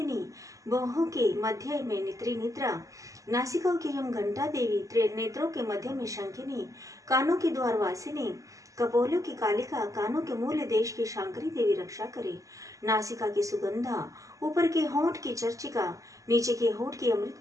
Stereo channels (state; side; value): late; left; 0.16 ms